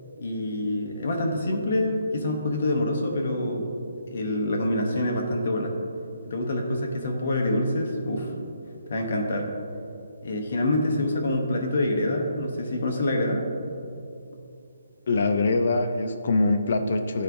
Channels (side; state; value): both; inverted; correlation -0.74